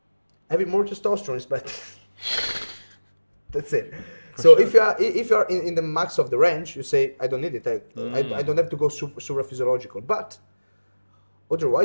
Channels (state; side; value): inverted; both; correlation -1.00